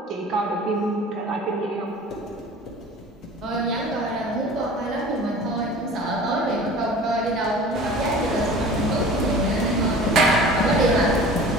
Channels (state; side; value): normal; both; correlation 0.42